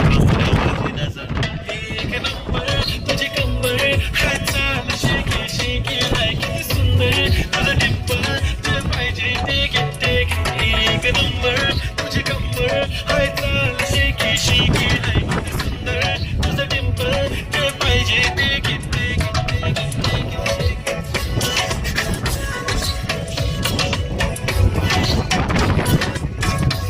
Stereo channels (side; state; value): both; identical; correlation 1.00